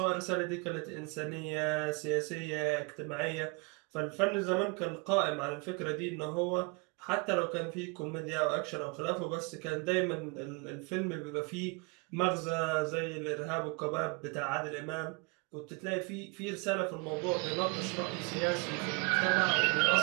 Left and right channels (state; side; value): quieter; left; 31.5 dB